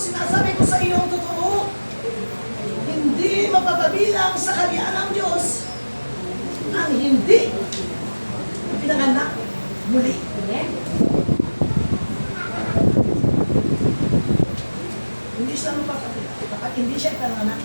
sinasabi ko sa iyo ang totoo, hindi mapapabilang sa kaharian ng Diyos ang hindi pinanganak muli. Amen. Hindi siya mapapabilang. Kapag hindi siya pinanganak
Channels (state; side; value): inverted; both; correlation -1.00